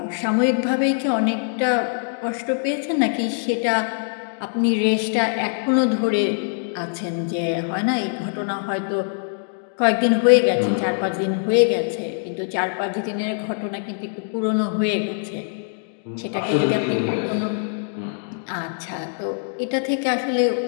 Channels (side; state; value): right; silent; digital silence